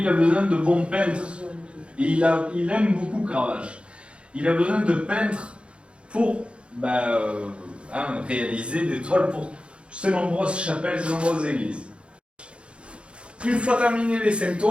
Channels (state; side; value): late; left; 0.058 ms